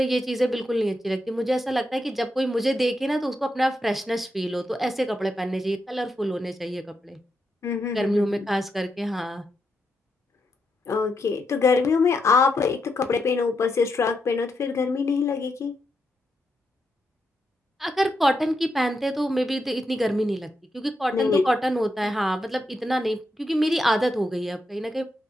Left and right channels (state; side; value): normal; both; correlation 0.84